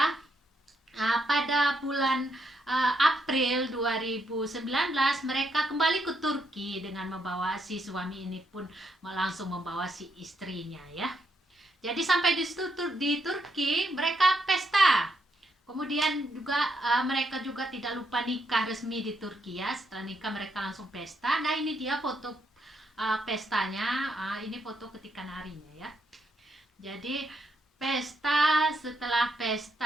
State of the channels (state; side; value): normal; both; correlation 0.77